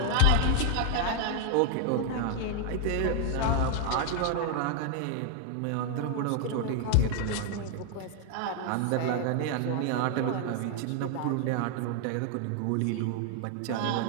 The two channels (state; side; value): different; both; correlation 0.00